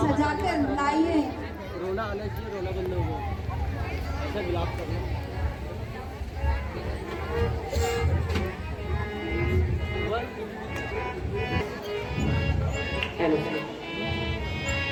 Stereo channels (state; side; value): identical; both; correlation 1.00